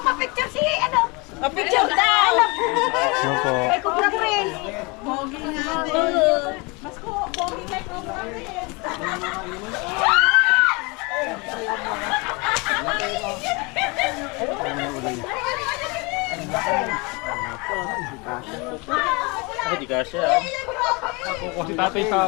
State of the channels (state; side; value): quieter; right; 28.1 dB